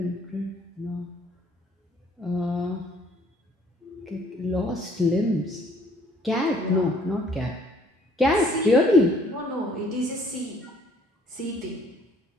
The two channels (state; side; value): normal; both; correlation 0.61